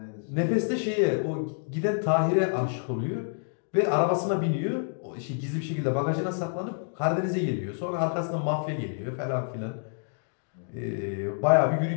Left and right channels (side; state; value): right; silent; digital silence